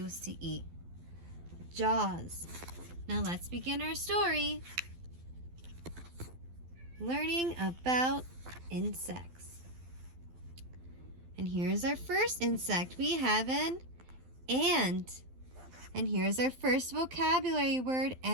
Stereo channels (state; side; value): late; left; 12 ms